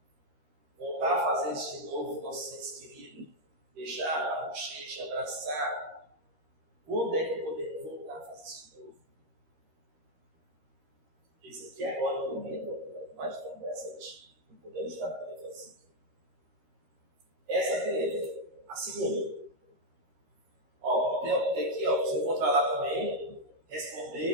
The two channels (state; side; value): late; left; 13 ms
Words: voltar a fazer isso de novo, nosso seres queridos, deixar a bochecha, abraçar, quando é que podemos voltar a fazer isso de novo? Isso aqui agora, no momento, mais tão presente. Não podemos estar podendo fazer isso. Essa é a primeira. A segunda. Tem aqui, você encontrar lá também,